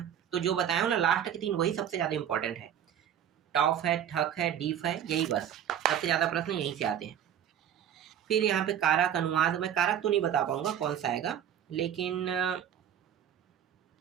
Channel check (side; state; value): left; quieter; 9.8 dB